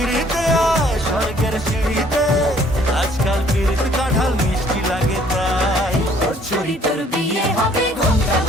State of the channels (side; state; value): both; normal; correlation 0.60